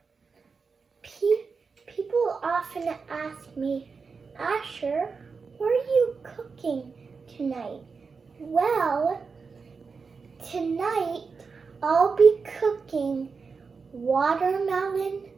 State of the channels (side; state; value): left; quieter; 5.0 dB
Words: People often ask me, Asher, what are you cooking tonight? Well, tonight I'll be cooking watermelon